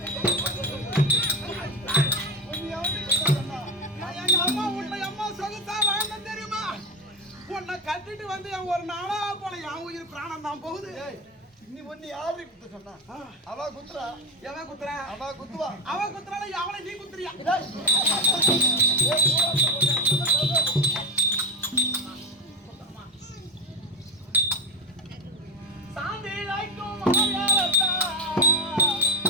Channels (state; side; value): normal; both; correlation 0.14